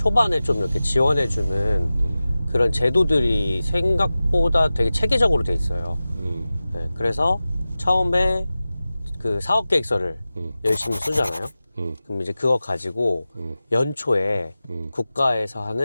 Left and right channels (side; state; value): both; inverted; correlation -0.95